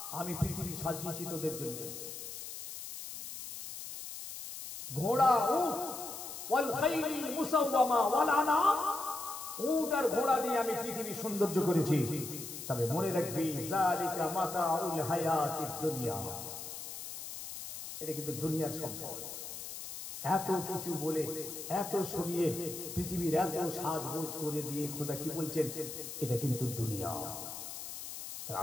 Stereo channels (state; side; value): noise; left; hiss, 9 dB below the sound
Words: আমি পৃথিবী সাজিয়েছি তোদের জন্য। ঘোড়া, উট, ওয়াল খাইল মুসাওয়ামা ওয়াল আনাম, উট আর ঘোড়া দিয়ে আমি পৃথিবী সৌন্দর্য করেছি। তবে মনে রাখবি যালিকা মাতাউল হায়াতিদ দুনিয়া, এটা কিন্তু দুনিয়ার সম্পদ। এত কিছু বলে, এত শুনিয়ে, পৃথিবীর এত সাজগোজ করে দিয়ে খোদা কি বলছেন? এটা কিন্তু দুনিয়া।